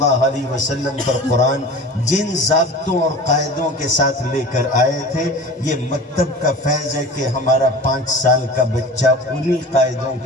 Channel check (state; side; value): normal; both; correlation 0.37